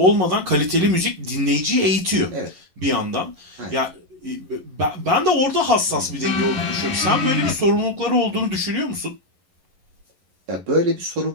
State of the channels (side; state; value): left; late; 11 ms